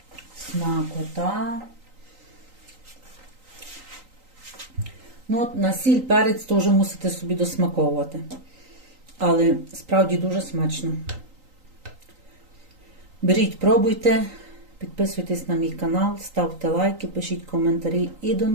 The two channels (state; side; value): late; left; 3.9 ms